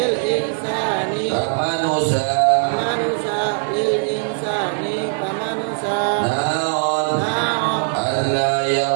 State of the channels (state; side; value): silent; left; 66 dB below the other